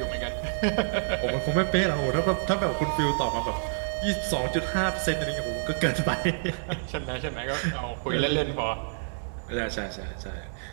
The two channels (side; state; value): left; silent; digital silence